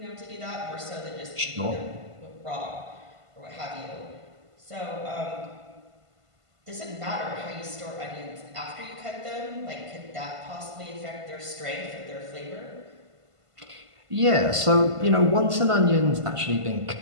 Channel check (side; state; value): left; late; 1.5 ms